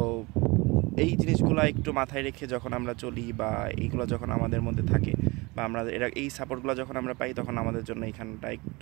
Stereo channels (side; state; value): left; quieter; 24.6 dB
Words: এই জিনিসগুলো একটু মাথায় রেখে যখন আমরা চলি, বা এইগুলো যখন আমাদের মধ্যে থাকে, বা আমরা এই সাপোর্টগুলো যখন আমরা পাই, তখন আমাদের জন্য এখানটা